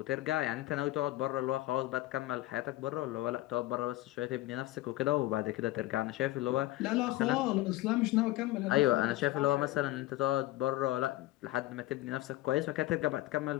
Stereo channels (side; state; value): right; quieter; 16.9 dB